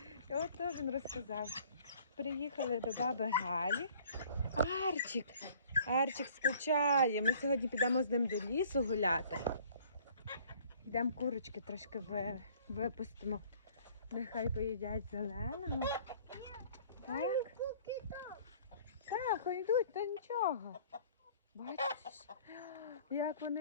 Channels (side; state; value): both; inverted; correlation -0.54